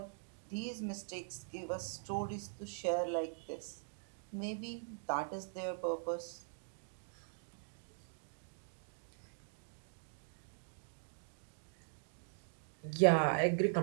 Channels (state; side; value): silent; left; digital silence